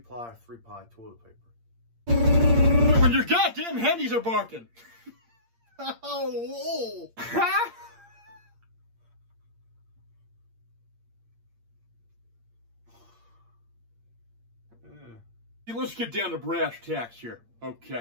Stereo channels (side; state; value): left; late; 8.7 ms